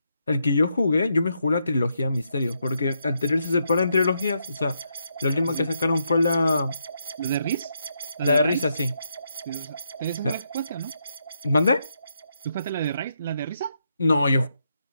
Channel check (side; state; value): both; inverted; correlation -0.80